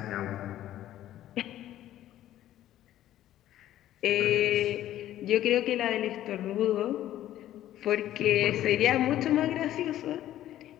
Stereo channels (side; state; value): right; quieter; 13.0 dB